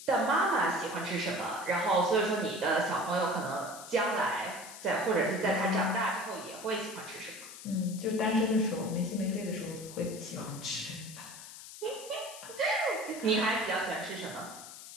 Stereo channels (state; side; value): noise; left; hiss, 14 dB below the sound